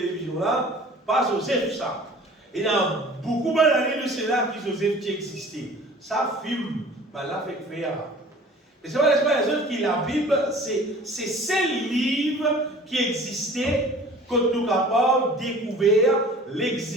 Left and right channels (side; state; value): both; normal; correlation 0.46